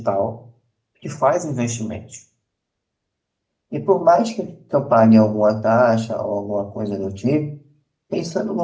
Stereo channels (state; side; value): identical; both; correlation 1.00